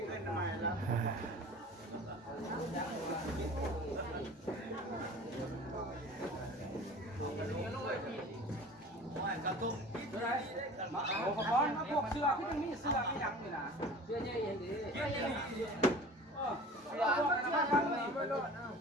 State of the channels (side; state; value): both; normal; correlation 0.41